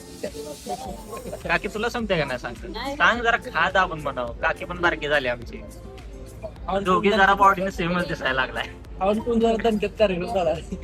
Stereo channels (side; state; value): both; identical; correlation 1.00